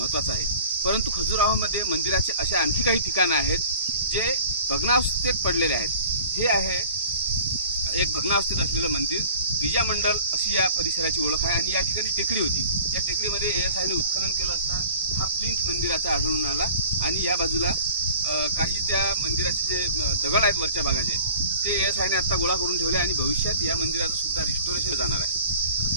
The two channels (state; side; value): inverted; both; correlation -0.46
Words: आहे, परंतु खजुराहोमध्ये मंदिराचे असे आणखी काही ठिकाणं आहेत जे भग्नावस्थेत पडलेले आहेत। हे आहे एक भग्नावस्थेत असलेलं मंदिर, विजय मंडल अशी या परिसराची ओळख आहे आणि या ठिकाणी टेकडी होती। त्या टेकडीमध्ये ASIने उत्खनन केलं असता हा प्लिंथ मंदिराचा आढळून आला आणि या बाजूला काही त्या मंदिराचे जे दगड आहेत वरच्या भागाचे ते ASIने आता गोळा करून ठेवले आणि भविष्यात या मंदिराचं सुद्धा रिस्टोरेशन जाणार